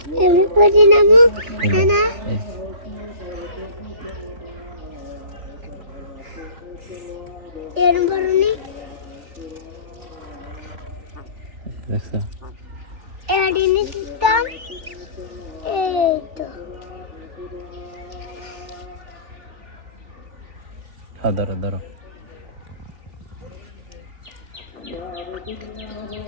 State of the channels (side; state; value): left; late; 3.3 ms